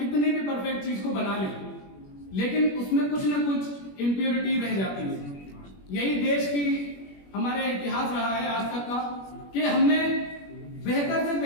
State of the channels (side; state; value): right; late; 21 ms